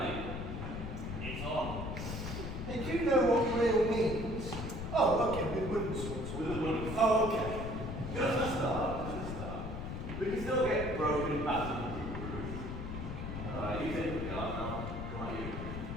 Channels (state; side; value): noise; left; rumble, 5 dB below the sound